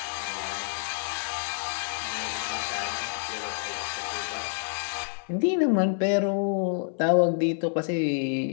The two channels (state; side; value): silent; right; 59 dB below the other